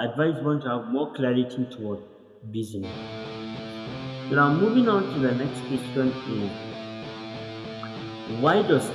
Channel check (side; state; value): both; identical; correlation 1.00